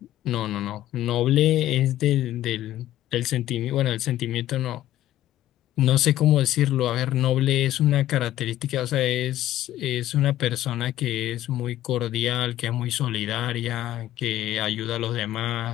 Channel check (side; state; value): right; quieter; 13.6 dB